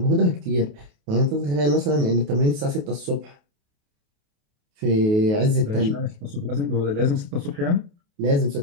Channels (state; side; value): late; left; 28 ms